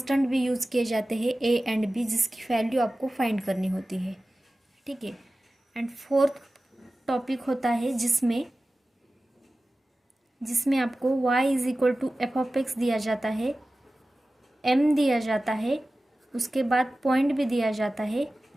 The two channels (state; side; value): normal; both; correlation 0.96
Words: भी यूज़ किए जाते हैं a एंड b, जिसकी वैल्यू आपको फाइंड करनी होती है। ठीक है, एंड फोर्थ टॉपिक होता है जिसमें आपको y is equal to F of x दिया जाता है, m दिया जाता है, उसके बाद पॉइंट भी दिया जाता है,